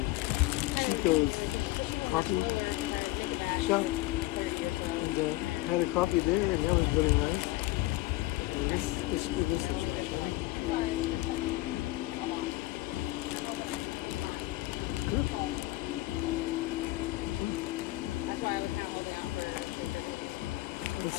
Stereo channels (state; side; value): quieter; right; 18.9 dB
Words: Chico's coffee shop and had a coffee there, and that was really nice. And let's give this a try, shall we? Good.